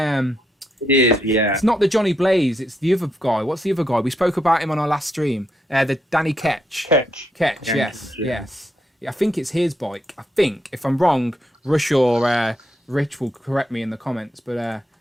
is, yeah. It's not the Johnny Blaze. It's the other guy. What's the other guy? We spoke about him on our last stream. The Danny Ketch. Ketch. Yes. Yeah, I think it's his bike. I think. If I'm wrong, Rush or Rich will correct me in the comments. But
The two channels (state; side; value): normal; both; correlation 0.79